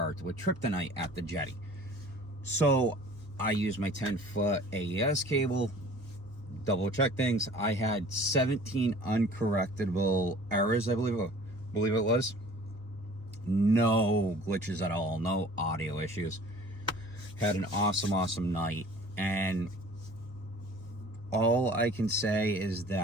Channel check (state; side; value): normal; both; correlation 0.48